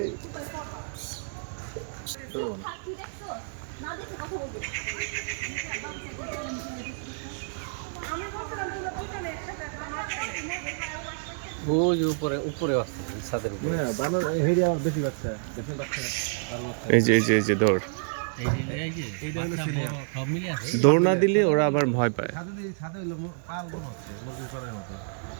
ওই যে উপরে উপরে আছে ছাদের উপরে না বানর হেডি আবার বেশি বাচ্চা দেখেন বাচ্চা আরো বাচ্চা এই যে দৌড় এই যে এইটা হলো বাচ্চা সিরিয়াল। বড় সব মিলে আছে দৌড় না দিলে ওরা আবার ভয় পায়। ছাদে হলো পাল মনে হচ্ছে মুরগির পালের মতো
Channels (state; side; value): silent; left; digital silence